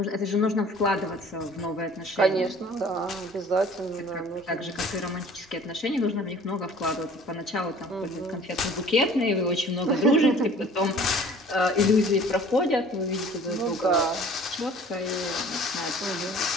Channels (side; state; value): both; normal; correlation 0.49